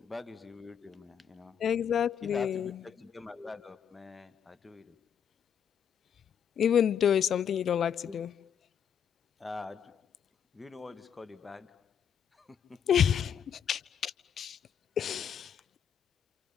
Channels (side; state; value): right; quieter; 8.2 dB